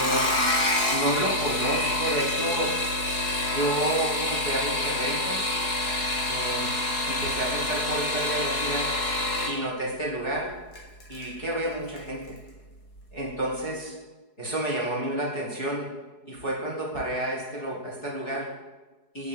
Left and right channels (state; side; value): late; right; 4.7 ms